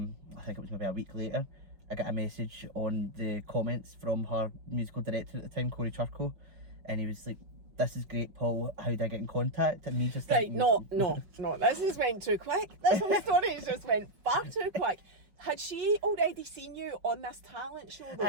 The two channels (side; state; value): left; late; 5.4 ms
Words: think it was maybe a week later, I got a message on the comments from her musical director at the time, Corey Churko, and he was like, "This is great, Paul, how do I get in contact?" And me just thinking, no, this has went too quick. This whole story has just went far too quick. Had she already seen you on this talent show though?